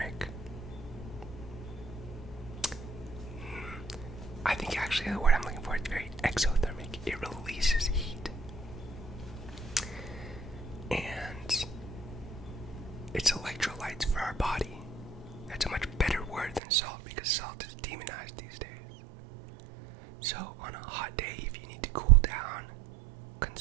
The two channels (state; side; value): drops out; left; at 16.6 s